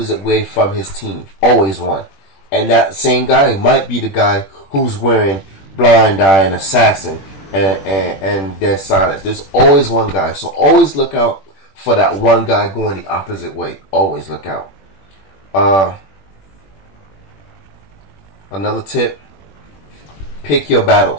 way from his team. Always one. And that same guy might be the guy who's wearing blind eye and assassin and dead silence. There's always one guy. So always look out for that one guy going the opposite way. Always look out. Another tip, pick your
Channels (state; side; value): late; right; 21 ms